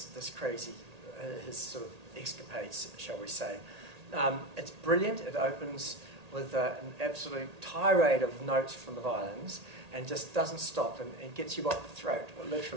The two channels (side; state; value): left; late; 1.8 ms